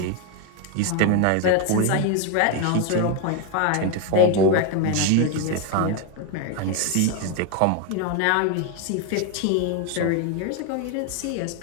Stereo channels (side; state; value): both; different; correlation 0.01